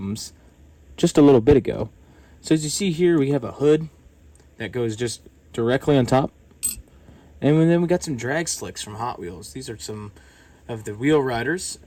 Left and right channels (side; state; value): both; identical; correlation 1.00